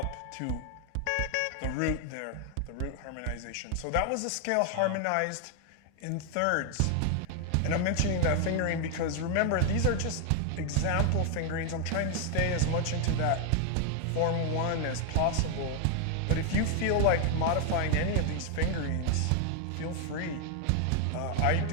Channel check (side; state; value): both; different; correlation 0.00